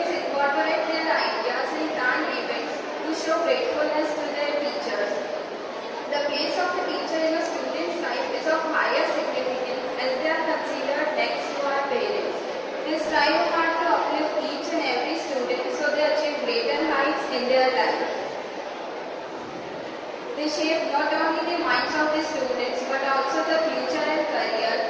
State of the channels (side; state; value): both; identical; correlation 1.00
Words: incorporate their ideas and plan events to show gratefulness to their teachers. The place of the teacher in a student's life is of higher significance as they are considered next to our parents. They strive hard to uplift each and every student so they achieve greater heights in their life. They shape not only the minds of the students but also the future and career